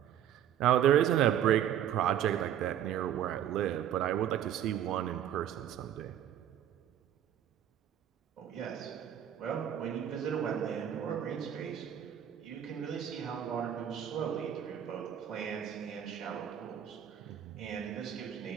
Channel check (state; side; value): quieter; left; 10.2 dB